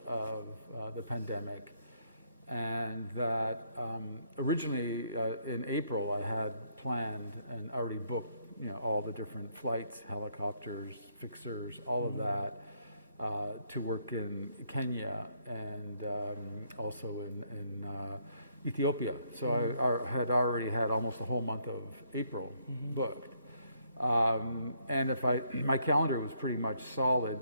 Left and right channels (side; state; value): both; inverted; correlation -0.70